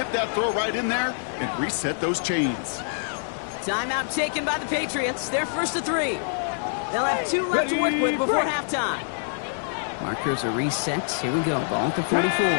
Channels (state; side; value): silent; right; digital silence